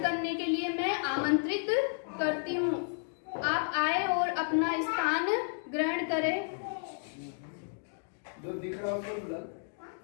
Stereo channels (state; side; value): silent; right; digital silence